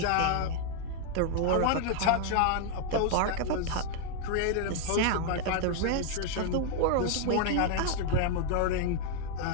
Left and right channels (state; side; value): different; both; correlation 0.00